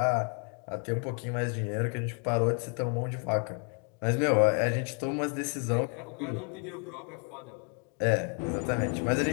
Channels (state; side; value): quieter; right; 38.9 dB